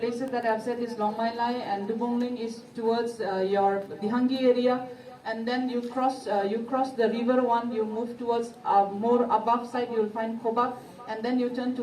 that I've said is Longmailai, and Dubongling is towards your Dihangi area, and then you cross the river one, you move towards more above side, you will find Kobak, and then you turn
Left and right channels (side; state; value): both; identical; correlation 1.00